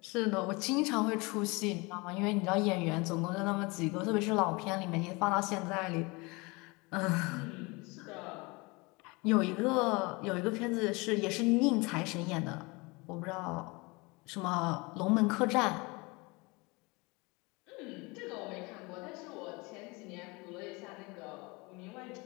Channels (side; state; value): right; quieter; 26.2 dB